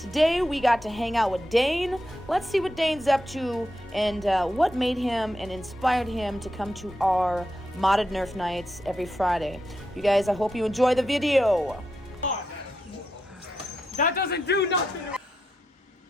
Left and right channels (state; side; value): normal; both; correlation 0.85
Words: we got to hang out with Dane. Let's see what Dane's up to and what made him and inspired him to come to our modded Nerf nights every Friday. You guys, I hope you enjoy the video. That doesn't do nothing!